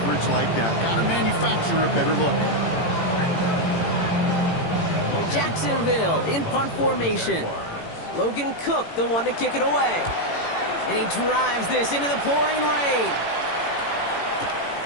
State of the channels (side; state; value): right; late; 18 ms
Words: like that. Got to manufacture a better look. Jacksonville in punt formation. Logan Cook, the one to kick it away. And he drives this into the pouring rain.